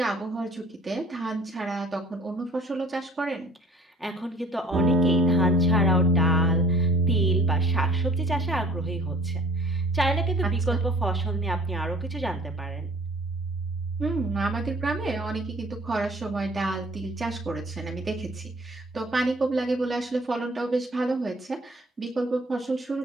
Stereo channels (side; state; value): both; normal; correlation 0.51